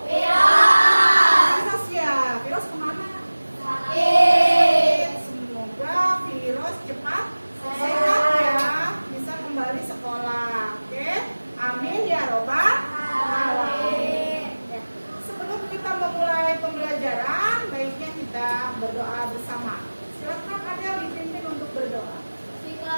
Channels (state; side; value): inverted; both; correlation -1.00